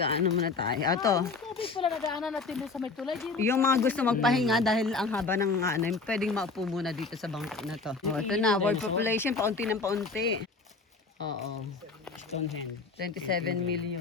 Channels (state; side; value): quieter; right; 4.1 dB